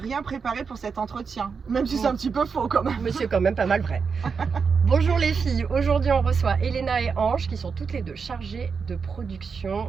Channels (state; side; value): quieter; left; 5.6 dB